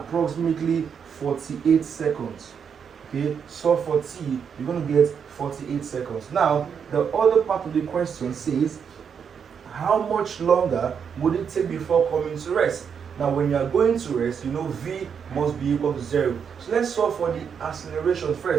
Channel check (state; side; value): quieter; left; 7.0 dB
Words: 48 seconds. Okay, so for T, you're going to get 48 seconds. Now, the other part of the question says, how much longer would it take before coming to rest? Now, when you are going to rest, you know V must be equal to 0. So let's solve for the acceleration